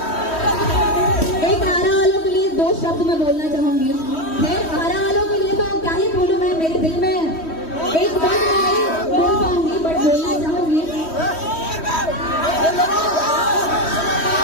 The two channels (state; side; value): late; right; 3.1 ms